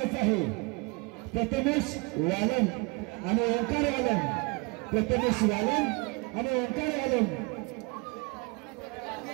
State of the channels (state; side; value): quieter; left; 28.7 dB